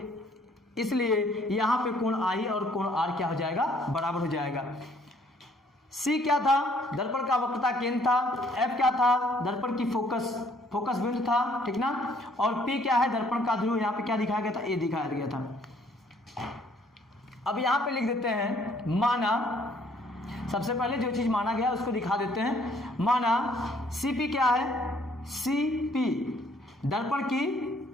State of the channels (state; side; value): normal; both; correlation 0.63